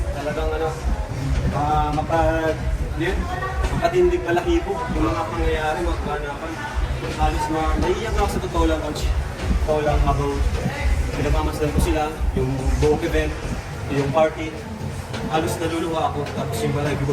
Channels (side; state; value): both; identical; correlation 1.00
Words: talagang makatindig balahibo yung mga pangyayari, mga kaganapan. Halos naiiyak na ako sa totoo lang, coach. Totoo lang habang pinagmamasdan ko sila, yung buong event, yung party. Halos naluluha ako, tapos yung balahibo ko